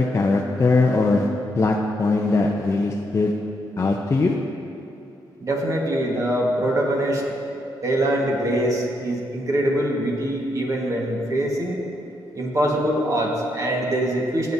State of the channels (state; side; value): normal; both; correlation 0.78